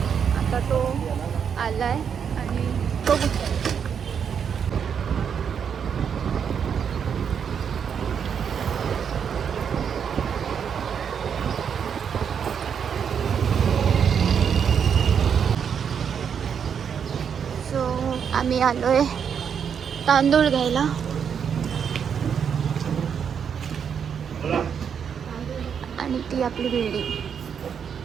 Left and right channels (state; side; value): quieter; left; 7.4 dB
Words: आता तो आला आहे आणि बघू. आम्ही आलो आहे तांदूळ घ्यायला. आणि ती आपली बिल्डिंग.